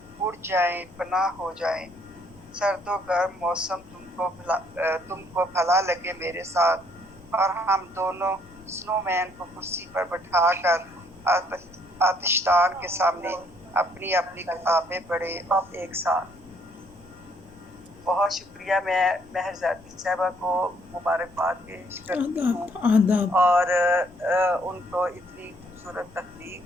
اڑ جائیں، پناہ ہو جائیں۔ سرد و گرم موسم تم کو بھلا لگے میرے ساتھ، اور ہم دونوں سنو مین کو کرسی پر بٹھا کر آتشدان کے سامنے اپنی اپنی کتابیں پڑھے ایک ساتھ۔ بہت شکریہ۔ میں مہر زادی صاحبہ کو مبارکباد پیش کرتی ہوں اور ان کو اتنی خوبصورت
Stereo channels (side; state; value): left; noise; hum, 28 dB below the sound